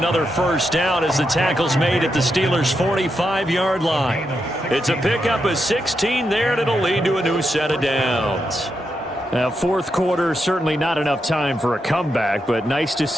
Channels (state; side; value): normal; both; correlation 0.84